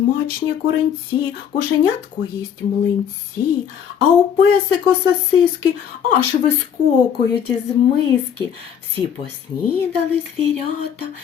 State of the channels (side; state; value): right; quieter; 8.3 dB